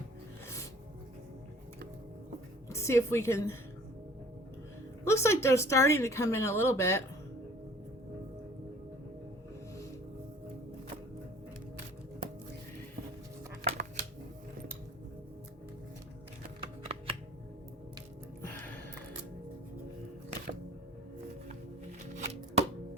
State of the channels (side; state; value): both; normal; correlation 0.50